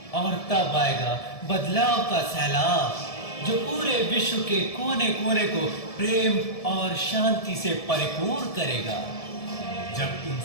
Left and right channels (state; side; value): late; right; 1.7 ms